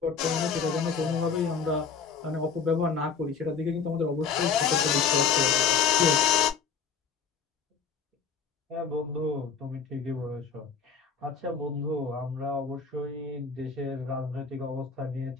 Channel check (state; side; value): quieter; right; 6.1 dB